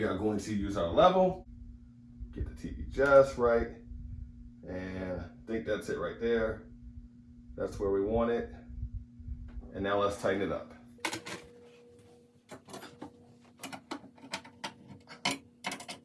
are going to use our level, get the TV just right, and I think that's it right there. That's where we want it. And now let's tighten it up.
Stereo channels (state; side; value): identical; both; correlation 1.00